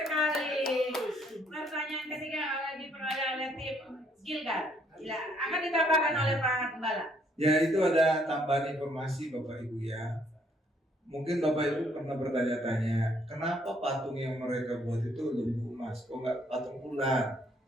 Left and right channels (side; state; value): both; normal; correlation 0.67